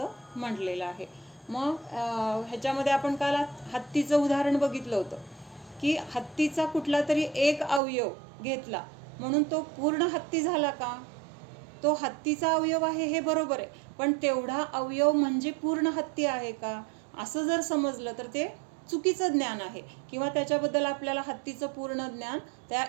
म्हटलेलं आहे. मग ह्याच्यामध्ये आपण काल हत्तीचं उदाहरण बघितलं होतं की हत्तीचा कुठला तरी एक अवयव घेतला म्हणून तो पूर्ण हत्ती झाला का? तो हत्तीचा अवयव आहे हे बरोबर आहे, पण तेवढा अवयव म्हणजे पूर्ण हत्ती आहे का असं जर समजलं तर ते चुकीचं ज्ञान आहे किंवा त्याच्याबद्दल आपल्याला हत्तीचं पूर्ण ज्ञान त्या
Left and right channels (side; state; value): left; drops out; at 7.8 s